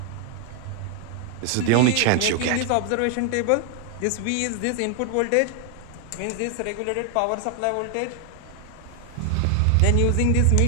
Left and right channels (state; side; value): different; both; correlation 0.00